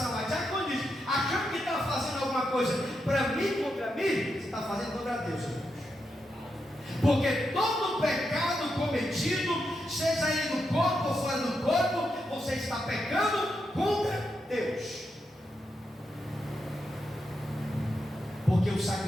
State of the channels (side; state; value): both; normal; correlation 0.85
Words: a diaconisa, achando que está fazendo alguma coisa para mim, contra mim, você está fazendo contra Deus, irmãos. Porque todo pecado cometido, seja ele no corpo ou fora do corpo, você está pecando contra Deus. Porque o